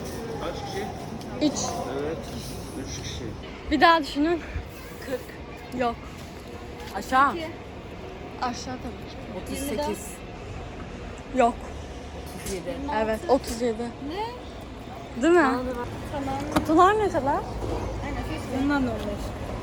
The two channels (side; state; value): both; identical; correlation 1.00